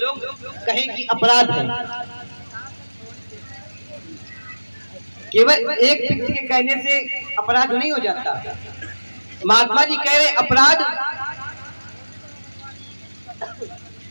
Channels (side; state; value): both; inverted; correlation -1.00